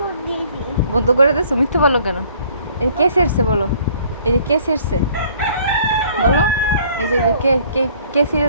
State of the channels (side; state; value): both; inverted; correlation -0.58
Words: বন্ধ করে দিয়েছো? মিথ্যে বলো কেন? এই কে ছেড়ছে বলো? এই যে কে ছেড়ছে বলো? এই যে কে কে কে ছিঁড়ে